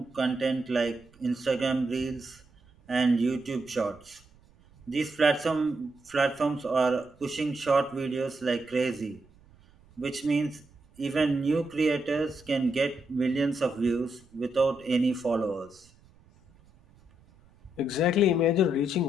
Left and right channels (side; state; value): right; noise; rumble, 28 dB below the sound